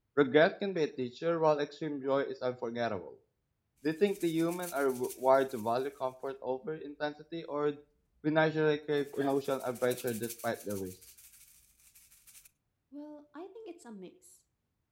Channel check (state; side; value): identical; both; correlation 1.00